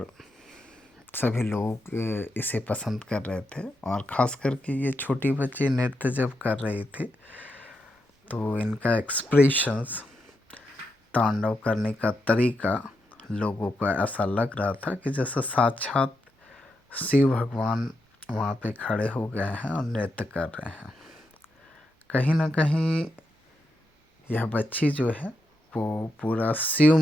सभी लोग इसे पसंद कर रहे थे। और ख़ास करके ये छोटी बच्ची नृत्य जब कर रही थी तो इनका एक्सप्रेशंस, तांडव करने का तरीका लोगों को ऐसा लग रहा था कि जैसे साक्षात शिव भगवान वहाँ पे खड़े हो गए हैं और नृत्य कर रहे हैं। कहीं ना कहीं यह बच्ची जो है वो पूरा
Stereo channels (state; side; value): normal; both; correlation 0.84